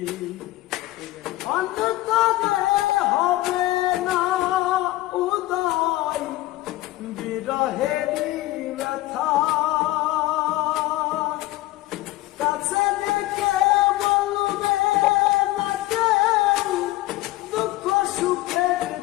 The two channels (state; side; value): quieter; right; 17.5 dB